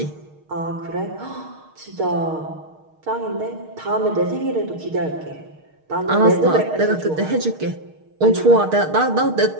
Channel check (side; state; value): left; late; 6.5 ms